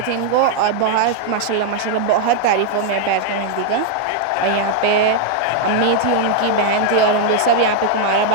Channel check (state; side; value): different; both; correlation 0.00